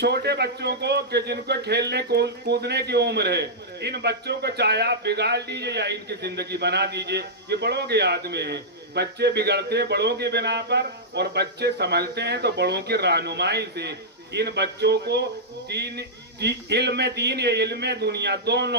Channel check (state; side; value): normal; both; correlation -0.10